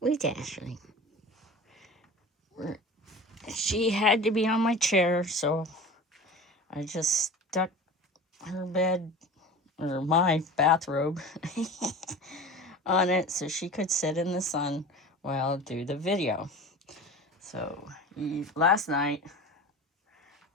Ashley. She had to be on my chair, so I just stuck her bed or my bathrobe on it so she could sit in the sun while I do the video. So last night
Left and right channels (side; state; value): both; normal; correlation 0.36